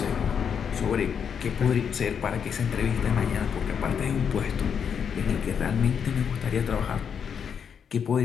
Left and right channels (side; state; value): right; quieter; 7.3 dB